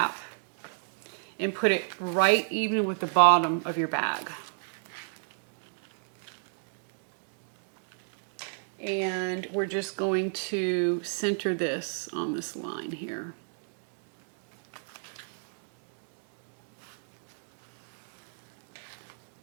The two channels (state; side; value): silent; left; digital silence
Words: and put it right even with the bottom of your bag. And we're just going to center this on this line here.